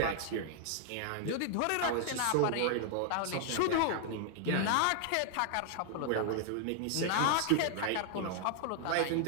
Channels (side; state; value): both; different; correlation 0.00